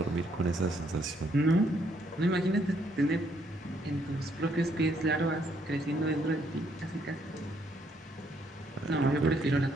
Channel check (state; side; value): normal; both; correlation 0.70